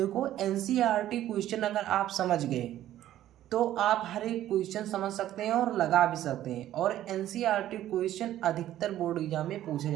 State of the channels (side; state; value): left; quieter; 12.9 dB